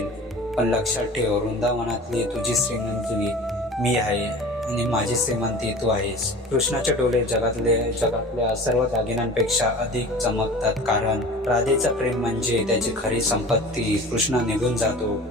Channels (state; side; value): normal; both; correlation 0.38